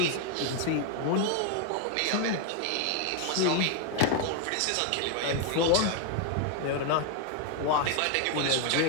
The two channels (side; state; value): both; different; correlation 0.01